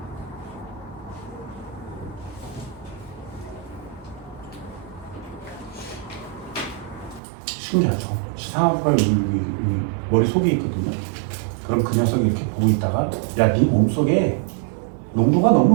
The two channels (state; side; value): drops out; left; at 7.2 s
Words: 신기하죠. 시상학과 머릿속에 있거든요. 그럼 그 녀석이 이렇게 보고 있다가 야, 네 몸속에 농도가